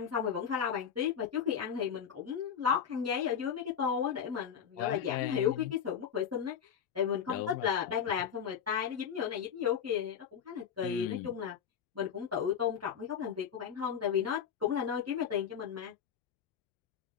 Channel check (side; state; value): right; quieter; 8.0 dB